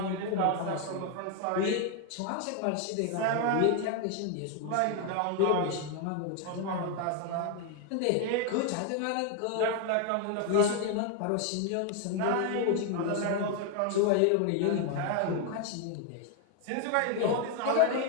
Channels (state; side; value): different; both; correlation 0.01